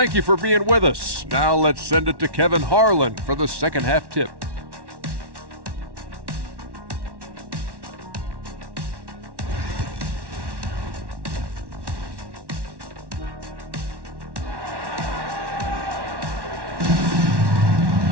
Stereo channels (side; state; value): left; late; 1.1 ms